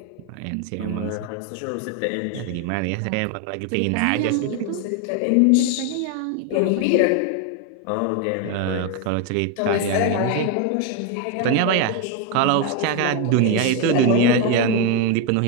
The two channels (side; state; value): both; different; correlation 0.01